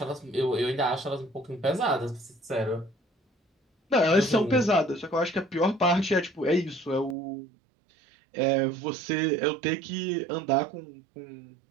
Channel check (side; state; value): left; drops out; at 7.2 s